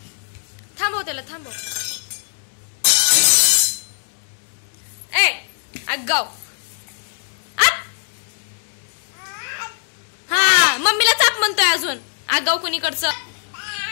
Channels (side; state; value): right; silent; 65 dB below the other